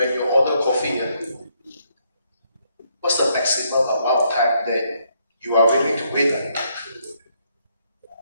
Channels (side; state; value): both; inverted; correlation -0.73